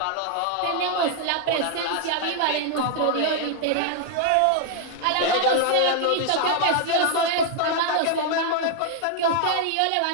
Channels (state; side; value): different; both; correlation 0.00